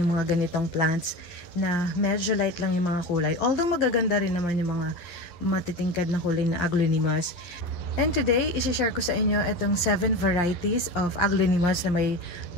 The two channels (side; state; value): right; late; 12 ms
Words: mga ganitong plants na medyo light lang yung mga kulay. Although magaganda rin naman yung mga matitingkad na kulay na aglonimas. And today, isi-share ko sa inyo itong 7 varieties of aglonimas na may